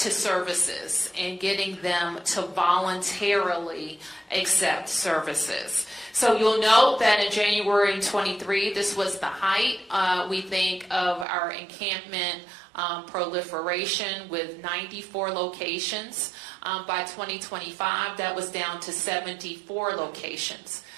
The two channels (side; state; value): left; drops out; at 11.2 s